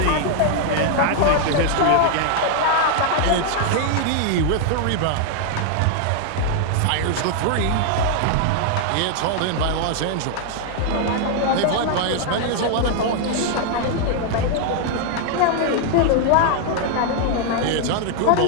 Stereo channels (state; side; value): different; both; correlation 0.00